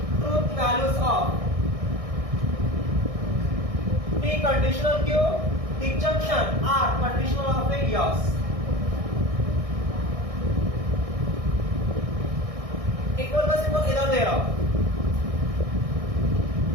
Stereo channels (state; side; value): late; left; 1.6 ms